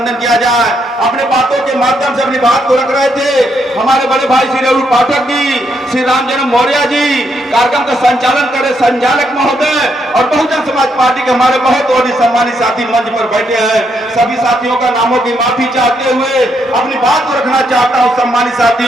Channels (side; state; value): both; normal; correlation 0.77